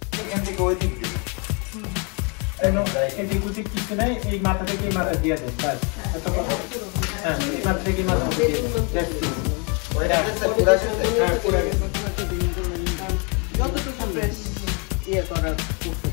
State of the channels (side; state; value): right; quieter; 34.1 dB